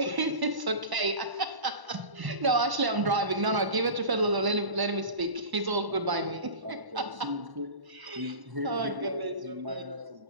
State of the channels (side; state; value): left; late; 1.0 ms